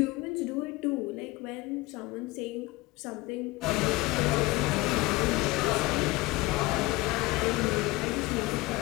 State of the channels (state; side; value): quieter; right; 21.3 dB